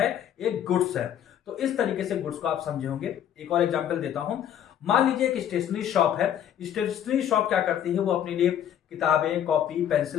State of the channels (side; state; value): right; quieter; 10.0 dB